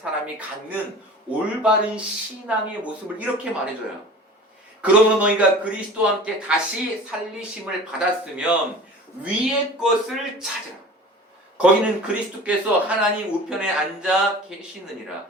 갖는 올바른 신앙의 모습을 이렇게 말해줘요. 그러므로 너희가 그리스도와 함께 다시 살리심을 받았으면 위의 것을 찾으라. 거기는 그리스도께서 하나님 우편에 앉아 계시느니라.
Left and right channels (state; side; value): normal; both; correlation 0.40